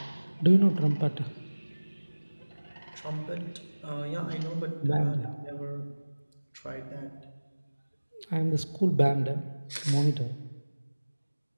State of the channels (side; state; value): both; inverted; correlation -1.00